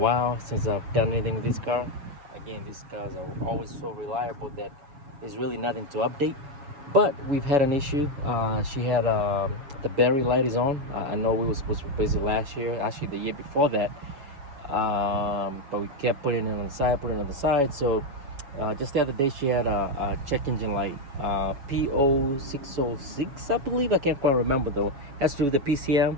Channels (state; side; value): late; left; 7.1 ms